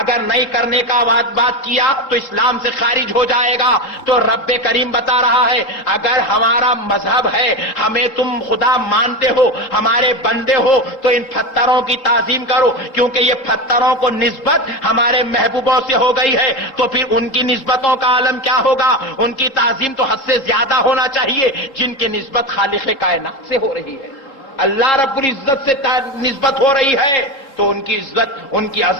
نہیں کرنے کا بات کیا تو اسلام سے خارج ہو جائے گا. تو رب کریم بتا رہا ہے اگر ہمارا مذہب ہے, ہمیں تم خدا مانتے ہو, ہمارے بندے ہو, تو ان پتھروں کی تعظیم کرو, کیونکہ یہ پتھروں کو نسبت ہمارے محبوبوں سے ہو گئی ہے. تو پھر ان کی نسبتوں کا عالم کیا ہوگا؟ ان کی تعظیم تو حد سے زیادہ ہونا چاہیے جن کی نسبت خالق کائنات سے ہو رہی ہے. اللہ رب العزت سے نسبت ہو رہی ہے تو ان کی عزت, ان کی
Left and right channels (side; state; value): right; late; 3.7 ms